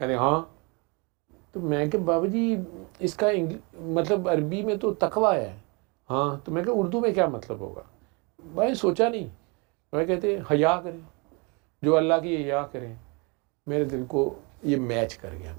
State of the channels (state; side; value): quieter; left; 30.5 dB